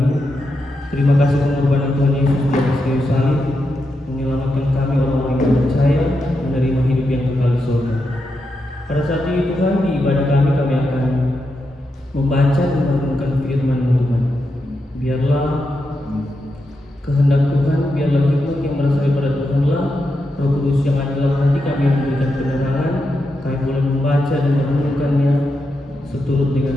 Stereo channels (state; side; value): normal; both; correlation 0.86